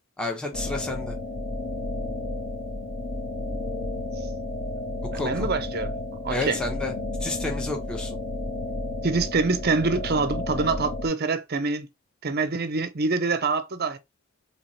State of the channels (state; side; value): normal; both; correlation 0.27